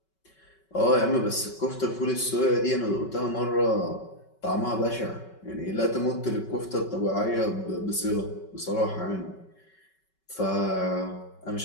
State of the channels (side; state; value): right; late; 5.3 ms